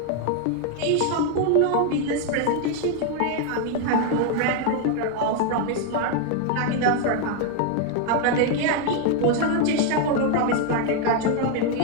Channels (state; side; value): different; both; correlation 0.01